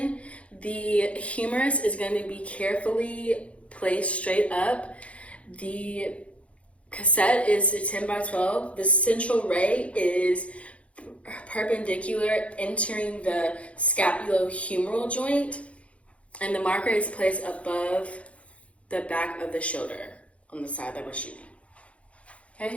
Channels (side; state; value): right; late; 0.063 ms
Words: The humerus is going to be carefully placed straight up. The cassette is a 10 by 12. The central ray is perpendicular entering the scapulohumeral joint, and the marker is placed above the back of the shoulder on the side that we're shooting.